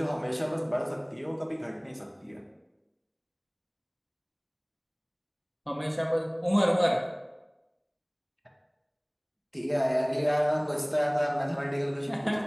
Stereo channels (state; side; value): identical; both; correlation 1.00